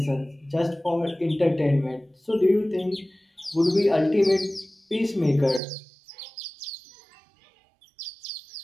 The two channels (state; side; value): drops out; left; at 5.6 s